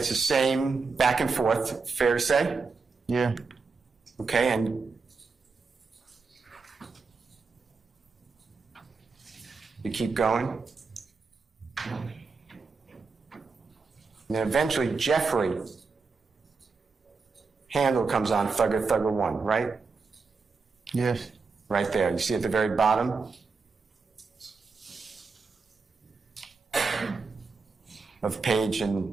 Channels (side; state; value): left; quieter; 4.6 dB